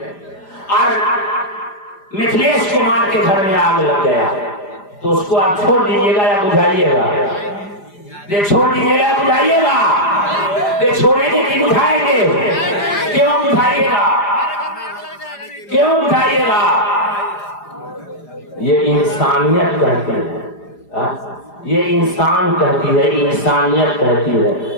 और मिथिलेश कुमार के घर में आग लग गया, तो उसको आप छोड़ दीजिएगा या बुझाइएगा? ये छोड़ दीजिएगा या बुझाइएगा? ये छोड़ेंगे कि बुझाएंगे? क्यों बुझाइएगा? क्यों बुझाइएगा? ये इंसानियत कहती है, ये इंसान कहती है, इंसानियत कहती है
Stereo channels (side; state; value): right; late; 4.9 ms